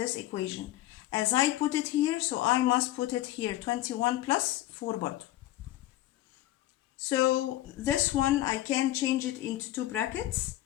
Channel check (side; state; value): right; quieter; 15.2 dB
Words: equation. As I put it here, so I must put it here, 21 plus 4 برضو. So this one I can change it into two brackets,